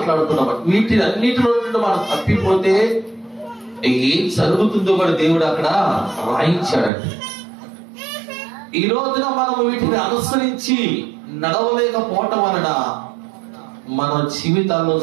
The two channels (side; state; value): left; drops out; at 6.9 s